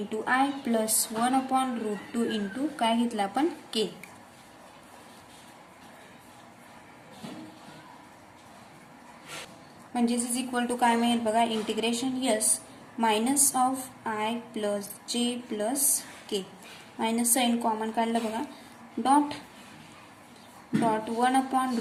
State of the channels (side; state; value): both; identical; correlation 1.00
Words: I plus 1/√2 into काय घेतलं आपण k. म्हणजेच इज इक्वल टू काय मिळेल बघा integration s minus of i plus j plus k. Minus sine common काढलं बघा. Dot